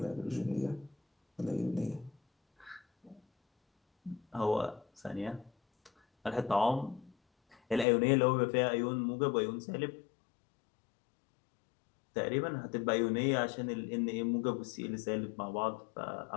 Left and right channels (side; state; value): right; drops out; at 7.9 s